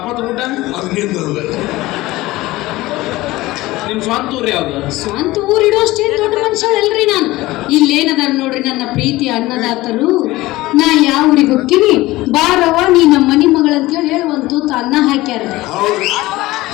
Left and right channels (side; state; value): right; quieter; 18.7 dB